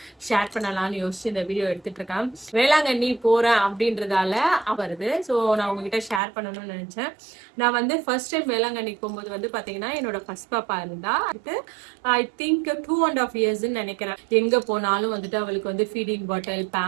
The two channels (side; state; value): left; drops out; at 6.2 s